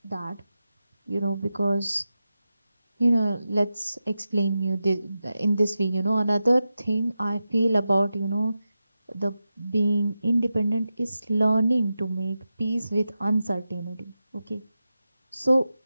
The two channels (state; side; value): inverted; both; correlation -0.91